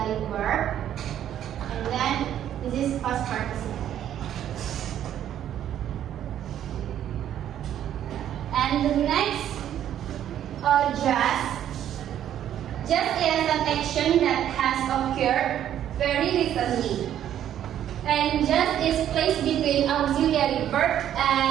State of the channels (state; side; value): quieter; left; 10.8 dB